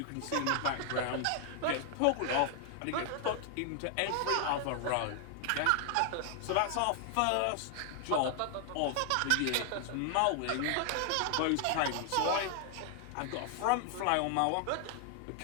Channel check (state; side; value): different; both; correlation 0.00